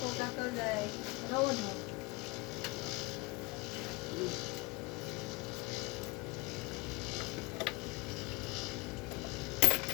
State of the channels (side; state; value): right; quieter; 25.2 dB